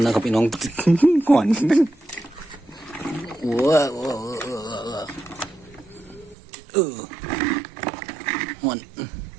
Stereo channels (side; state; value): left; drops out; at 6.4 s